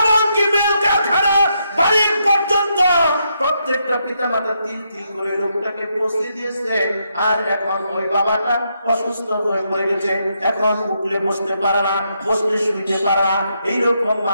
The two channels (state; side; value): inverted; both; correlation -0.79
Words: মিল কারখানা মালিক পর্যন্ত প্রত্যেকটা পিতা মাতা তিল তিল করে লোকটাকে পৌঁছে দিয়েছে। আর এখন ওই বাবাটা অসুস্থ হয়ে পড়ে গেছে, এখন উঠলে বসতে পারে না, বসলে শুইতে পারে না, এইরকম